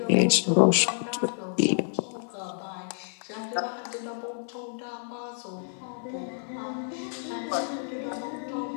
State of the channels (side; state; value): right; silent; 59 dB below the other